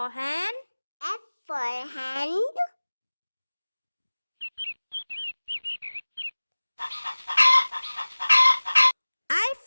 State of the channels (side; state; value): both; inverted; correlation -1.00